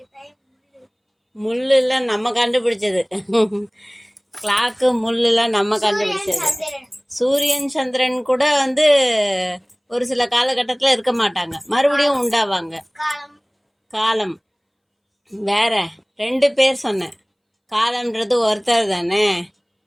முள்ளுலாம் நம்ம கண்டுபிடிச்சது. கிளாக்கு முள்ளுலாம் நம்ம கண்டுபிடிச்சது. சூரியன் சந்திரன் கூட ஒரு சில காலகட்டத்தில் இருக்க மாட்டாங்க, மறுபடியும் உண்டாவாங்க. காலம் வேற. 2 பேர் சொன்னேன். காலம்ன்றது ஒருத்தர் தானே.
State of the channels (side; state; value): both; identical; correlation 1.00